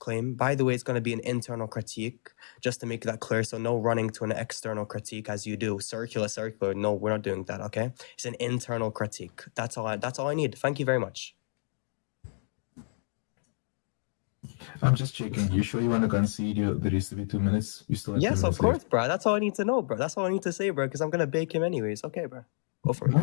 By the way, it's going to be an internal critique, just to make that clear. So no running to an external critique as you do circular. No, we're not doing that. Okay, it's an internal critique. That's all I need. Thank you very much. I'm just checking. You sure you want to concede the rest of it 2 minutes? You still have 2 Yes, minutes of course, left. bro. That's all I need to know, bro. That's all I need to say, bro. Because I'm gonna bake him anyways. Okay, bro. Go for it.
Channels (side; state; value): right; silent; digital silence